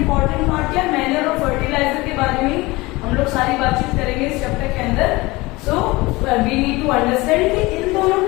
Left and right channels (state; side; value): quieter; right; 21.9 dB